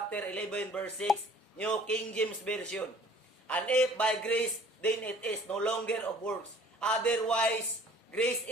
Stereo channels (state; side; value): normal; both; correlation 0.52